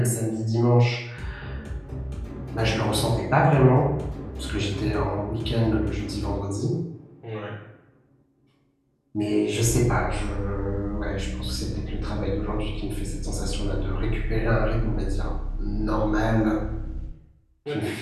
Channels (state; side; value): identical; both; correlation 1.00